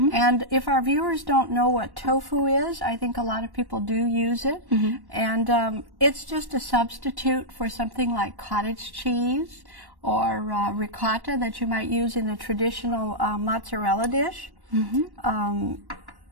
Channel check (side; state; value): left; late; 1.1 ms